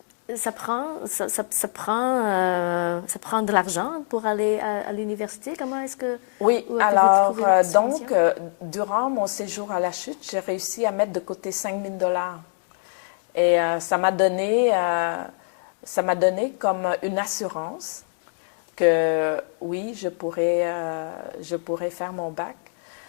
ça prend de l'argent pour aller à l'université. Comment est-ce que... Oui, alors, donc, durant mon séjour à la Chute, j'ai réussi à mettre de côté 5 000 $. Et ça m'a donné comme une assurance que oui, je pourrais faire mon bac.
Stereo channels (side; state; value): right; silent; digital silence